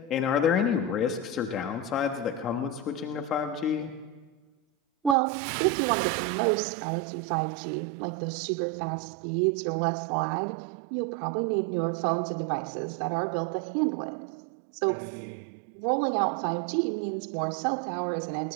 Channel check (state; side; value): drops out; left; at 5.2 s